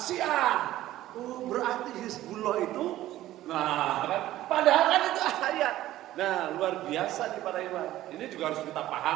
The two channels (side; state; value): left; quieter; 14.6 dB